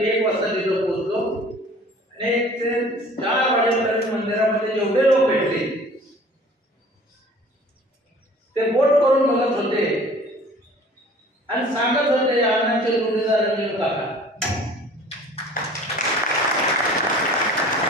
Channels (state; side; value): normal; both; correlation 0.48